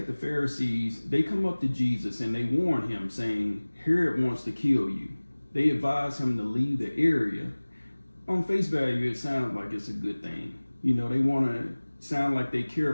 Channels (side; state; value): both; inverted; correlation -1.00